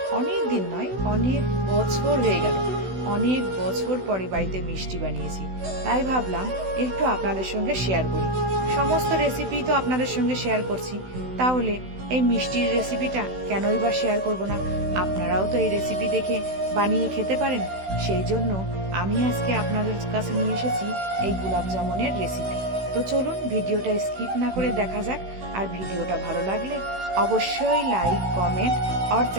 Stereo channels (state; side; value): late; left; 16 ms